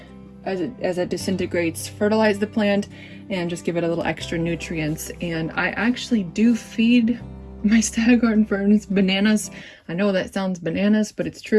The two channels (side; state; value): both; identical; correlation 1.00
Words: as it disintegrates, fertilize the plant and just give it a little extra nutrients. And I actually do feed my Staghorn ferns bananas. I know that sounds bananas, but it's